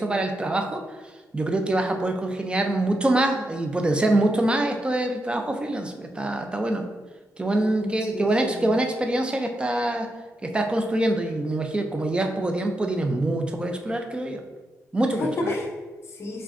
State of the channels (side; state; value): both; normal; correlation 0.85